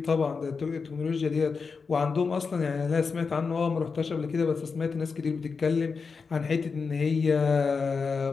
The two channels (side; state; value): right; quieter; 5.0 dB